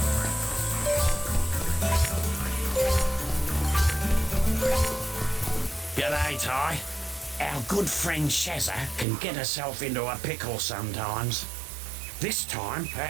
G'day, Ty. Our good friend Shazza can get herself into a pickle sometimes. This time,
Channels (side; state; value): left; drops out; at 9.1 s